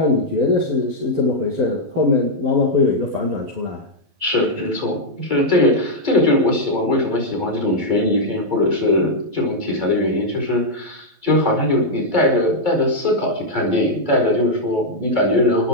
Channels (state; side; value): late; left; 12 ms